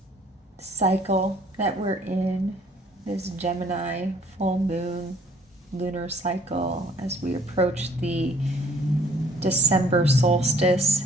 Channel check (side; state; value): both; normal; correlation 0.58